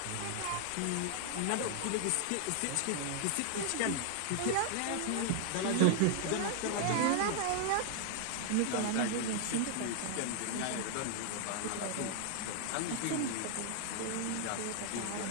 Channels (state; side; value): different; both; correlation 0.00